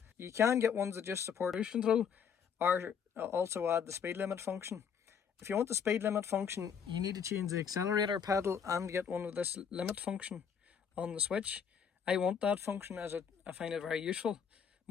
You can get ones that just support cruise control, or also add the speed limit function. If you want the speed limit function, you need to change the accelerator pedal and get one with this limit function on the switch. I want that function as I find it very useful,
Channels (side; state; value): right; quieter; 7.3 dB